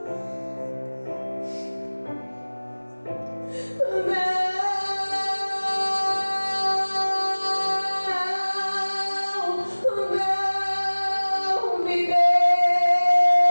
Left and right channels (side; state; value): both; inverted; correlation -1.00